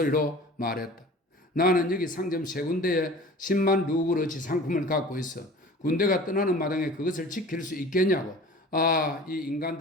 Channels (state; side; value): normal; both; correlation 0.42